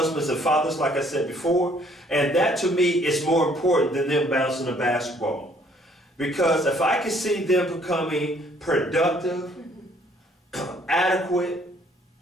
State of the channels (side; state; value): both; normal; correlation 0.62